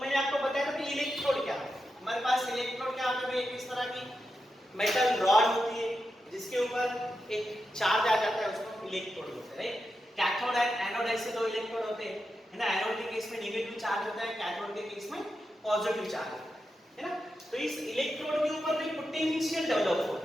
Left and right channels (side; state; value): both; normal; correlation 0.88